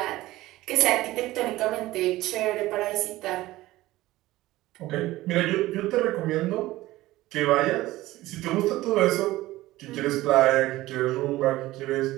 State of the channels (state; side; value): quieter; left; 17.3 dB